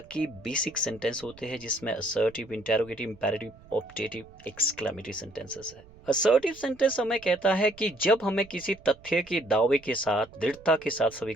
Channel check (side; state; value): right; noise; rumble, 24 dB below the sound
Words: के basic sentence होते हैं जिसमें assertive, interrogative, imperative, optative, exclamatory sentences है। Assertive sentence हमें कहता है कि जब हमें किसी तथ्य के दावे के साथ दृढ़ता के साथ